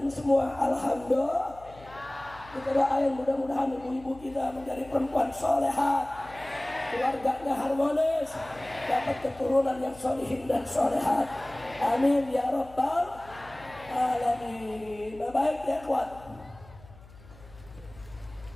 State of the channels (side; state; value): left; noise; hum, 21 dB below the sound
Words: semua. Alhamdulillah. Kita doain mudah-mudahan ibu-ibu kita menjadi perempuan solehat, keluarganya harmonis, dapat keturunan yang solihin dan solehat. Amin ya rabbal alamin. Baik ya kuat.